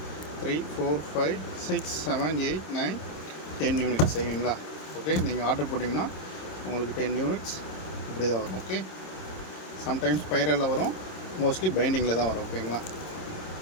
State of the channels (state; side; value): late; right; 26 ms